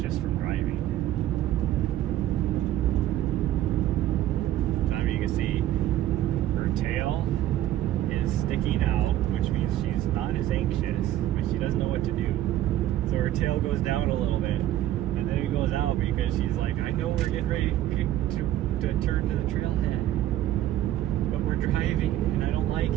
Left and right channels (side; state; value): left; quieter; 13.2 dB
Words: from driving. So you can see her tail is sticking out, which means she's not as anxious, but she doesn't know what to do. So her tail goes down a little bit, and then it goes out because she's like, I know we're getting ready to turn to the trailhead, but we're driving and I don't like